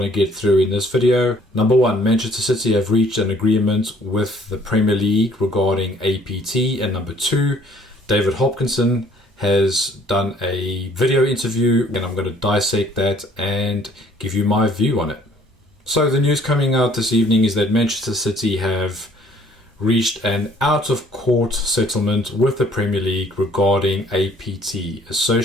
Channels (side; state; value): both; normal; correlation 0.59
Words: to get through in this video. Number one, Manchester City have reached an agreement with the Premier League regarding APT. And number two, David Hopkinson has done a video interview and I'm going to dissect that and give you my view on it. So the news coming out this evening is that Manchester City have reached an out-of-court settlement with the Premier League regarding APT,